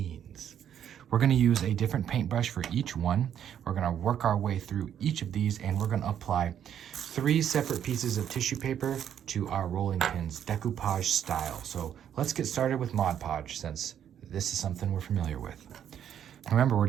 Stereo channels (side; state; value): left; quieter; 9.5 dB